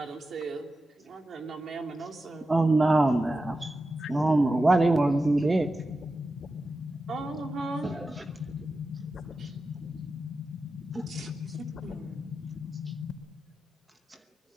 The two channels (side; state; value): both; normal; correlation 0.92